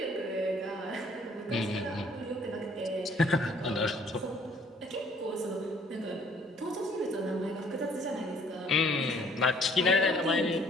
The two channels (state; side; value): normal; both; correlation 0.59